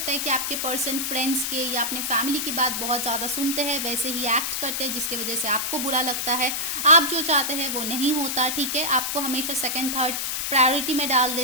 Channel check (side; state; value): left; noise; hiss, 1 dB below the sound